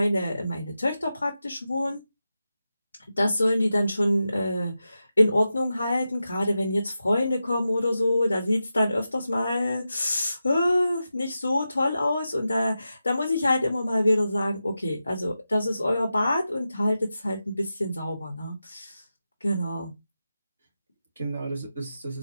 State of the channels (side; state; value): both; inverted; correlation -0.91